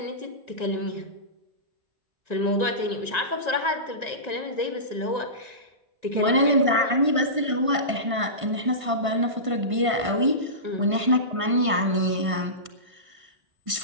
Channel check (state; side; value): late; left; 1.5 ms